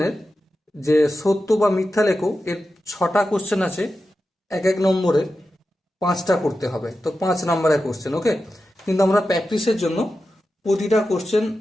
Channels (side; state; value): both; normal; correlation 0.91